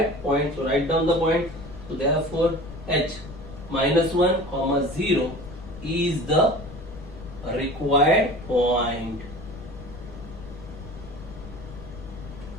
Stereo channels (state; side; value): noise; left; rumble, 14 dB below the sound